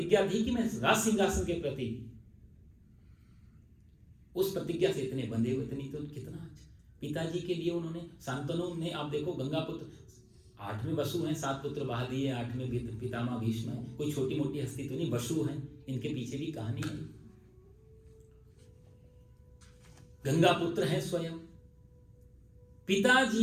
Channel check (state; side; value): identical; both; correlation 1.00